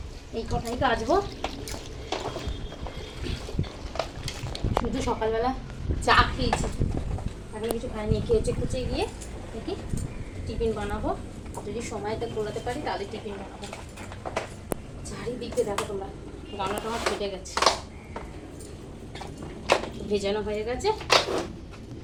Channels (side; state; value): both; identical; correlation 1.00